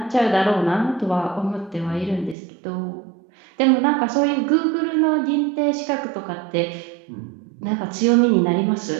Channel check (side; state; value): left; drops out; at 2.4 s